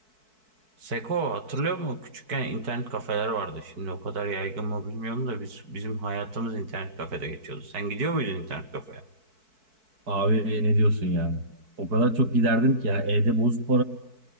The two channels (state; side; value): late; left; 4.6 ms